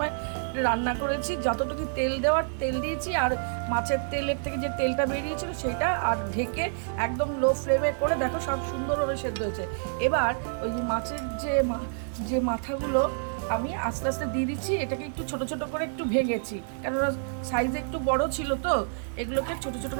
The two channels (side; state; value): left; silent; 59 dB below the other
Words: রান্না করেছি, যতটুকু তেল দেওয়ার তেল দিয়েছি, আর মাছের তেলের থেকে যে তেলটা বেরিয়েছিল সেটা, আর ঢেকে একদম লো ফ্লেমে করে দেখো সব সুন্দরভাবে সেদ্ধ হয়েছে। এবার ওই মাছের যে মাথাগুলো আমি আস্তে আস্তে দিয়ে দিচ্ছি। এটাকে একটু ছোট ছোট করে একটু ভেঙেছি, কেননা সাইজে একটু বড় ছিল তো, এগুলোকে ছোট ছোট